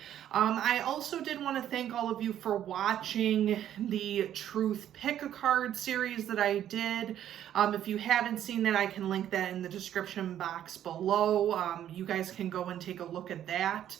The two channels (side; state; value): left; quieter; 11.0 dB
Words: I also did want to thank all of you for watching the Truth Pick a Card series that I did. If you haven't seen that, I can link that in the description box below. You guys can go and take a look at that.